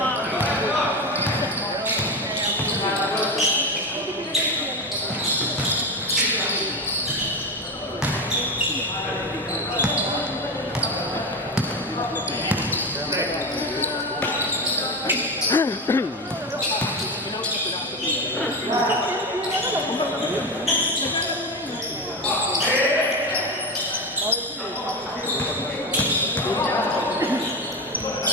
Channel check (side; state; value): both; normal; correlation 0.18